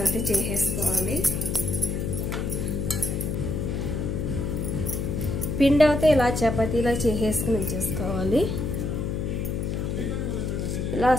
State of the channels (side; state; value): left; noise; hum, 1 dB below the sound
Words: అయితే చేసేసుకోవాలి. పిండి అయితే ఇలా చపాతీలా చేసేసుకుని ఉంచేసుకోవాలి. ఇలా